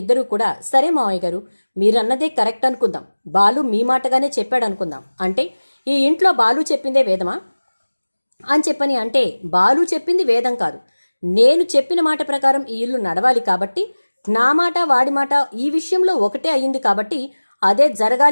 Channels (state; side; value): inverted; both; correlation -1.00